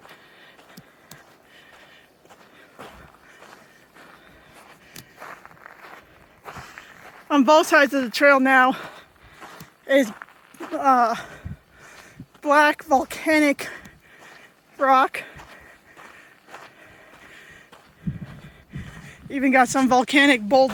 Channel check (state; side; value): identical; both; correlation 1.00